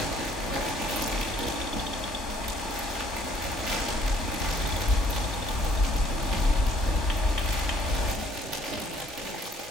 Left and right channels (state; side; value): normal; both; correlation 0.61